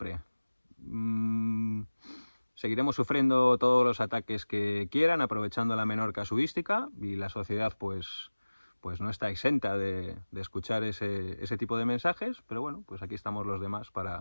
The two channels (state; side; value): inverted; both; correlation -1.00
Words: Seguiremos sufriendo todos los ataques que quieran, aprovechando la menor casuística y la sociedad pues no está exenta de escuchar ese tipo de mensajes, pero bueno, pues aquí estamos los demás